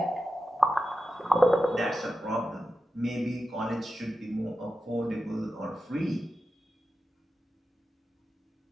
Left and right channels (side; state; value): both; normal; correlation 0.92